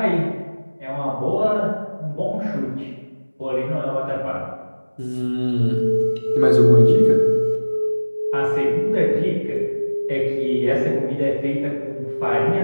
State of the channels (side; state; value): both; inverted; correlation -1.00